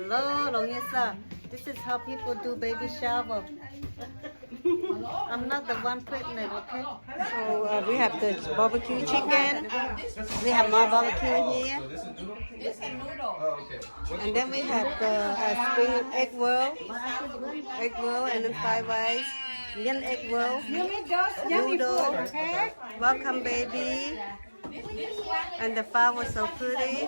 Longisa. This is how people do baby shower. I'm not the one pregnant, okay? So we have the barbecue chicken. We have more barbecue here. And then we have the spring egg roll, and then fried rice, onion egg roll, noodle. Welcome, baby. And the flower was so pretty.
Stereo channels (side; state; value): both; inverted; correlation -1.00